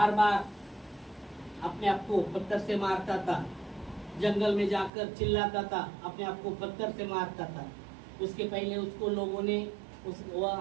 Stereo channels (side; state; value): left; drops out; at 4.9 s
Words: बार अपने आप को पत्थर से मारता था, जंगल में जाकर चिल्लाता था, अपने आप को पत्थर से मारता था। उसके पहले उसको लोगों ने, उस